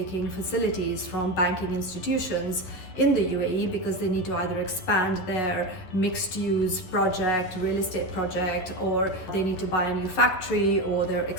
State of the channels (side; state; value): right; late; 11 ms